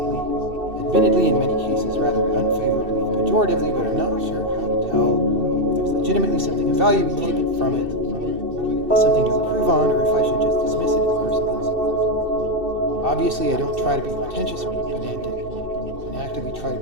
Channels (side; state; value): left; late; 2.6 ms